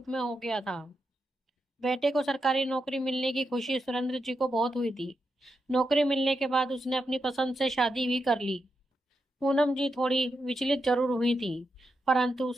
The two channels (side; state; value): both; normal; correlation 0.85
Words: में हो गया था। बेटे को सरकारी नौकरी मिलने की खुशी सुरेंद्र जी को बहुत हुई थी। नौकरी मिलने के बाद उसने अपनी पसंद से शादी भी कर ली। पूनम जी थोड़ी विचलित जरूर हुई थी, परंतु